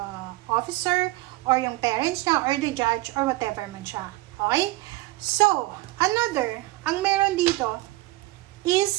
officer or yung parents niya or the judge or whatever man siya. Okay? So, another, ang meron dito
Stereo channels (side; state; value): left; quieter; 19.3 dB